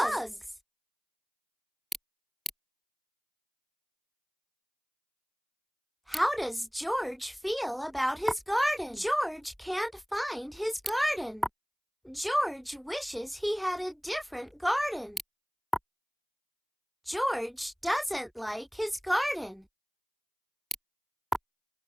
How does George feel about his garden? George can't find his garden. George wishes he had a different garden. George doesn't like his garden.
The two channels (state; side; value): identical; both; correlation 1.00